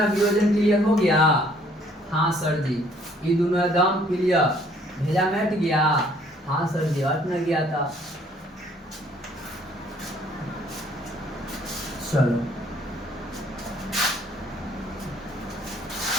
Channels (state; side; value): normal; both; correlation 0.61